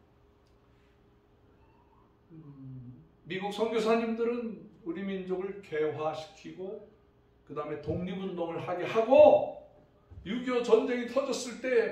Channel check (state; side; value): identical; both; correlation 1.00